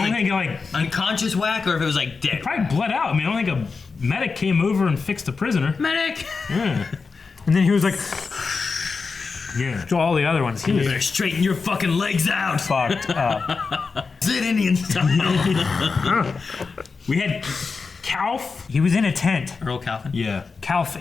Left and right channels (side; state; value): right; quieter; 4.7 dB